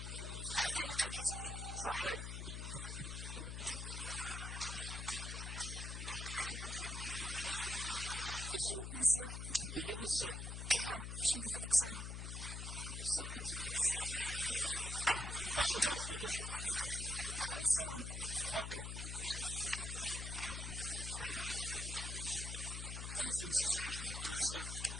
باقي كاتديري. صحيت. الزول إلا ما تسعد؟ لا كيش بدات هذيك الصالة. صحيت. كشو دار رزقك كشو؟ أقلو ساون. أقل. أنزل سي سعيد. على السلامة.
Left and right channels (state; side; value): noise; left; hum, 5 dB below the sound